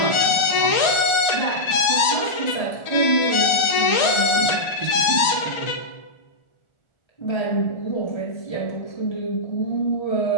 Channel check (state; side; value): late; right; 1.4 ms